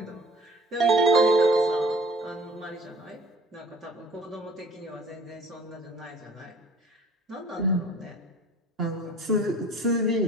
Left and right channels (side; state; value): both; normal; correlation 0.50